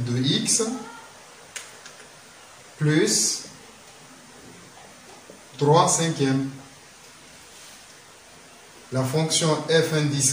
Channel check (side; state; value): both; identical; correlation 1.00